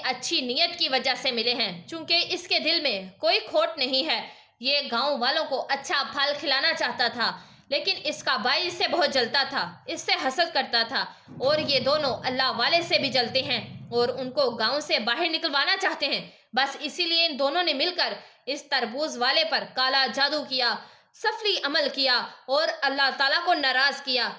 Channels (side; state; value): both; identical; correlation 1.00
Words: اچھی نیت کی وجہ سے ملے ہیں، چونکہ اس کے دل میں کوئی کھوٹ نہیں ہے. یہ گاؤں والوں کو اچھا پھل کھلانا چاہتا تھا، لیکن اس کا بھائی اس سے بہت جلتا تھا، اس سے حسد کرتا تھا، اور یہ دونوں اللہ والے سے بھی جلتے ہیں اور ان کو گاؤں سے باہر نکلوانا چاہتے ہیں. بس اسی لیے ان دونوں نے مل کر اس تربوز والے پر کالا جادو کیا، سفلی عمل کیا اور اللہ تعالیٰ کو ناراض کیا.